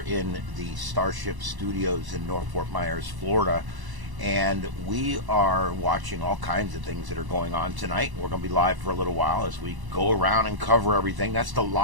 the Starship Studios in North Fort Myers, Florida. And we are watching all kinds of things that are going on tonight. We're going to be live for a little while as we go around and cover everything. That's the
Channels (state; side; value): late; left; 1.0 ms